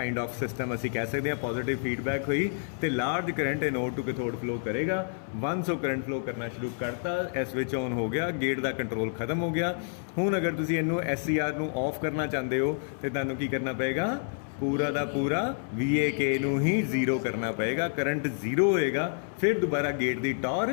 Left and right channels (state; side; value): silent; right; 59 dB below the other